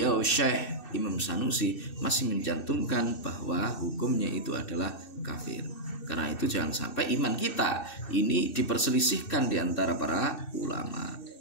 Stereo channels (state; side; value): late; right; 2.6 ms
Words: Syekh Imam Sanusi masih mencantumkan bahwa hukumnya itu adalah kafir. Karena itu jangan sampai iman kita ini diperselisihkan di antara para ulama.